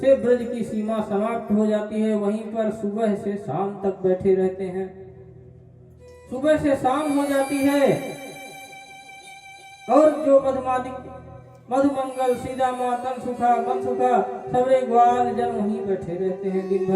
ब्रज की सीमा समाप्त हो जाती है वहीं पर सुबह से शाम तक बैठे रहते हैं। सुबह से शाम हो जाती है और जो मधुमंगल सीधा मातन सुखा मन सुखा सबरे ग्वाल जन वहीं बैठे रहते हैं दिन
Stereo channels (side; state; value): both; identical; correlation 1.00